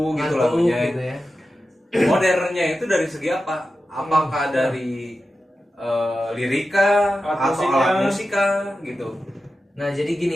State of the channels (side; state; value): both; normal; correlation 0.92